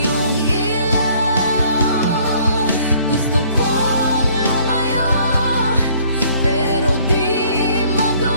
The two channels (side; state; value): both; inverted; correlation -0.59